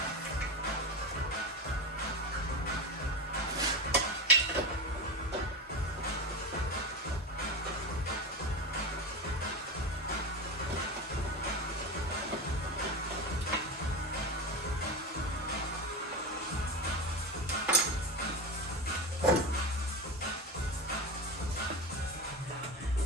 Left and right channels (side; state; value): both; normal; correlation 0.21